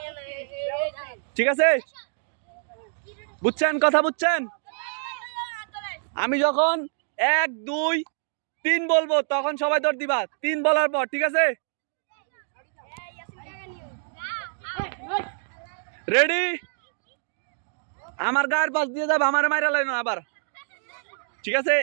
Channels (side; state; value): left; silent; digital silence